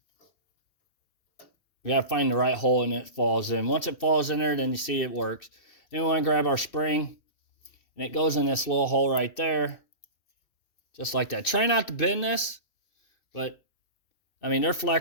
We got to find the right hole and it falls in. Once it falls in there, then you see it works. Then we want to grab our spring. And it goes in this little hole right there. Just like that. Try not to bend this. But, I mean, they're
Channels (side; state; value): right; late; 2.6 ms